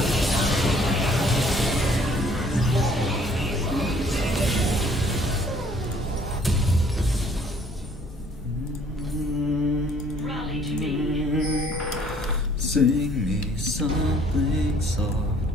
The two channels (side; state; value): both; normal; correlation 0.59